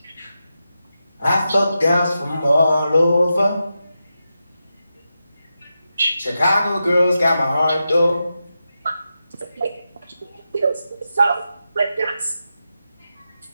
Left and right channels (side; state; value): both; inverted; correlation -0.89